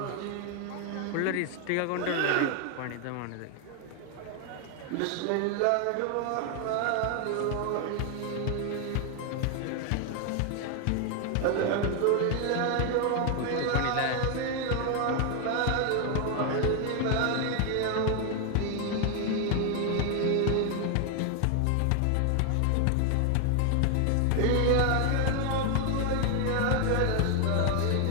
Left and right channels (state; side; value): different; both; correlation 0.00